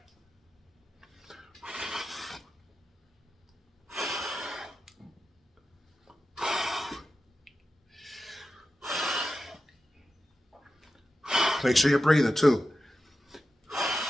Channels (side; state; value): both; normal; correlation 0.92